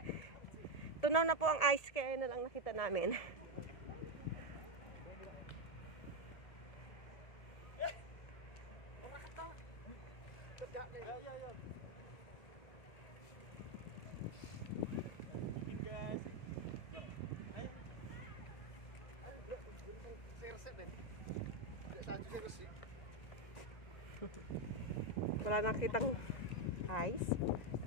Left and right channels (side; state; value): right; late; 1.7 ms